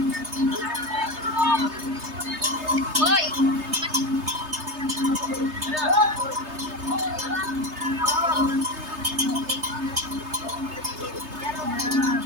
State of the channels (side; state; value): left; late; 3.3 ms